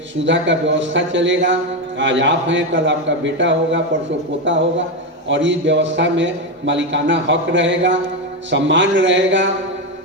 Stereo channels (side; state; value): both; normal; correlation 0.11